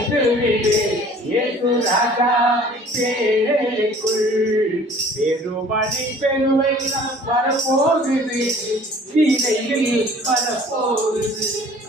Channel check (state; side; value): normal; both; correlation 0.50